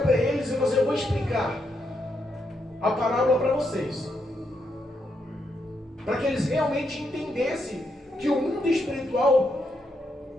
para eles e eu vou explicar a parábola para vocês, para que eles realmente entendessem que o mundo espiritual,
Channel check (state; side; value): normal; both; correlation 0.80